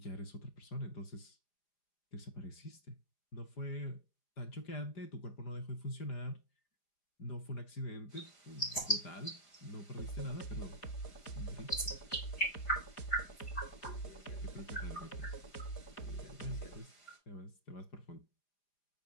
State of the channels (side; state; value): right; late; 4.9 ms